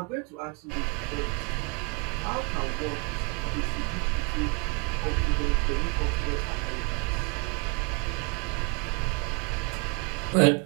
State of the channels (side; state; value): left; quieter; 30.6 dB